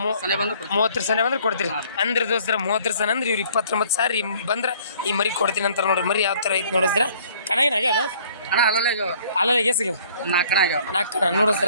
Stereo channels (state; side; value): inverted; both; correlation -0.57